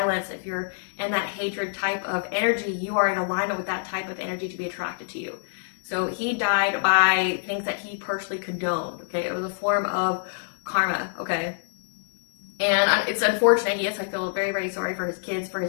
if you're in that hatred type of energy, you are in alignment with that type of energy to be attracted to you. So he died by things that he personally condoned. Okay, it was a form of karma. Okay, and it's unfortunate. Yes, I feel very, very sorry for his kids, for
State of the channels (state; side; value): silent; right; digital silence